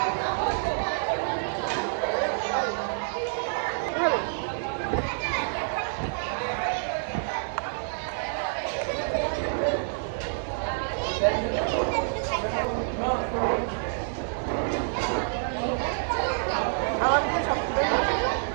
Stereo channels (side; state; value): left; silent; 60 dB below the other